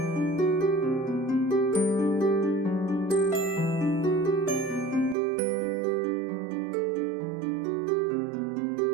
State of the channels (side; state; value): left; drops out; at 5.2 s